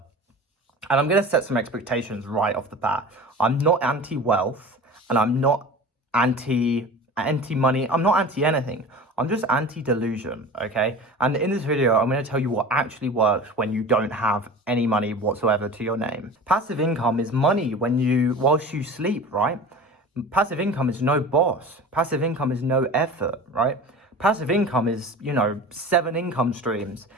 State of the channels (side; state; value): both; normal; correlation 0.36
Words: And I'm going to set some expectations right off the bat. I'm not anti-wealth, and I'm not anti-money. I'm not anti-anything. I'm just anti-delusion, okay? And in this video, I'm going to tell you what actually works when you don't have any money whatsoever to your name. Passive income is money whilst you sleep, right? Passive income is no boss. Passive income is no effort, right? Passive income is, 7 income streams: